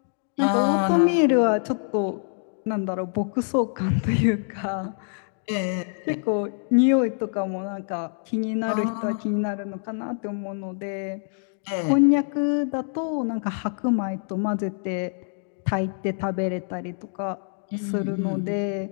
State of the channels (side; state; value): right; silent; 61 dB below the other